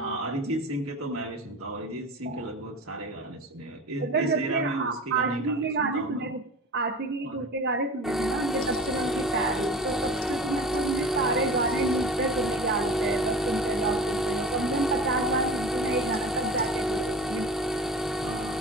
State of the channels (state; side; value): normal; both; correlation 0.36